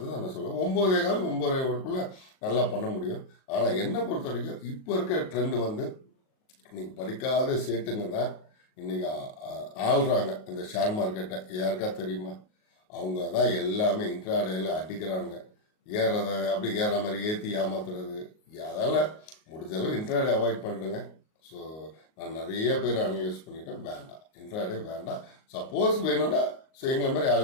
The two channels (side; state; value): right; late; 38 ms